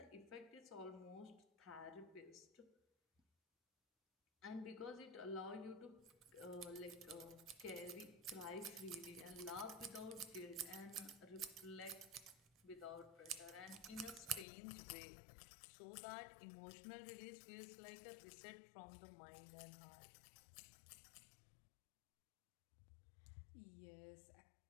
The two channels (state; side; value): drops out; right; at 14.5 s